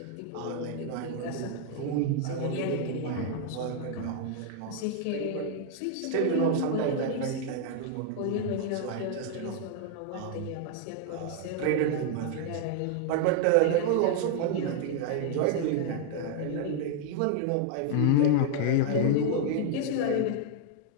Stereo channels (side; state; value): both; different; correlation 0.00